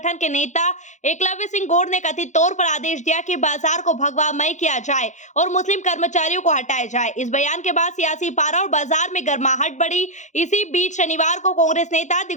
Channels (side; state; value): right; late; 0.35 ms